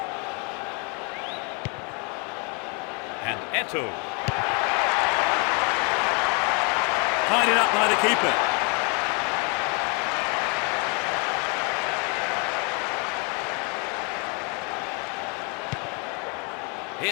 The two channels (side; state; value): right; quieter; 34.3 dB